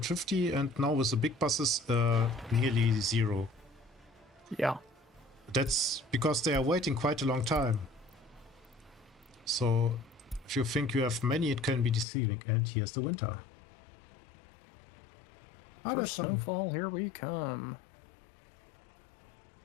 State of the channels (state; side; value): drops out; right; at 12.1 s